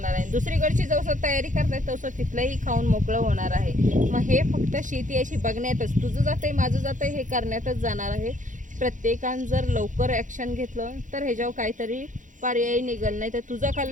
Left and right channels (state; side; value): late; left; 0.37 ms